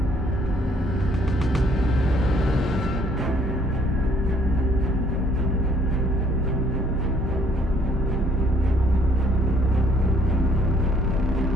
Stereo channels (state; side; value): normal; both; correlation 0.63